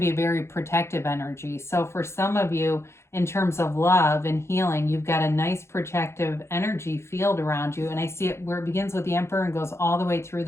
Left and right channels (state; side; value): late; right; 0.13 ms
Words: be a very protective energy. So for some of you, in terms of love and healing, you've got a nice protective energy field around you. And I see it where it begins with the Emperor and goes all the way through